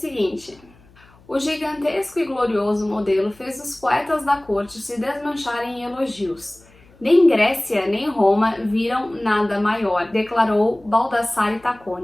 o gigantesco e glorioso modelo fez os poetas da corte se desmancharem em elogios. Nem Grécia nem Roma viram nada maior, declarou Baldassare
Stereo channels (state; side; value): noise; left; hum, 28 dB below the sound